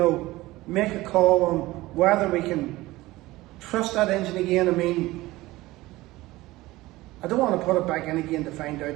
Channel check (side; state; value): left; quieter; 18.7 dB